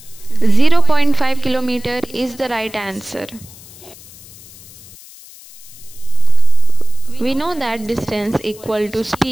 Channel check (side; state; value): left; noise; hiss, 20 dB below the sound